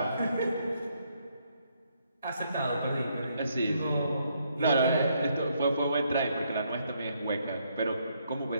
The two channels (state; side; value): inverted; both; correlation -0.73